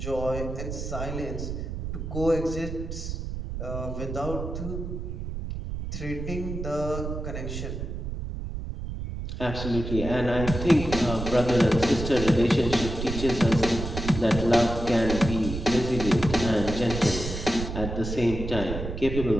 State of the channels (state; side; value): noise; right; rumble, 6 dB below the sound